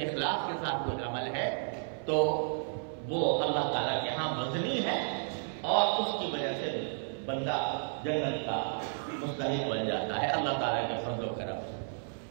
اخلاص کے ساتھ کوئی عمل ہے تو وہ اللہ تعالیٰ کے ہاں وزنی ہے، اور اس کی وجہ سے بندہ جنت کا مستحق بن جاتا ہے اللہ تعالیٰ کے فضل و کرم سے۔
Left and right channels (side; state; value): left; silent; 56 dB below the other